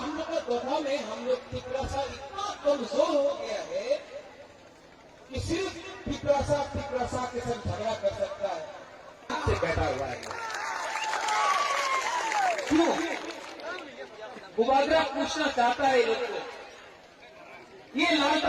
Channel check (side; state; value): both; identical; correlation 1.00